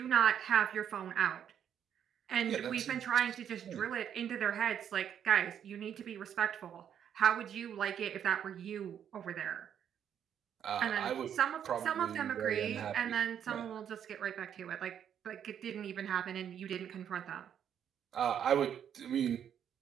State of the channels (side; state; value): left; quieter; 9.0 dB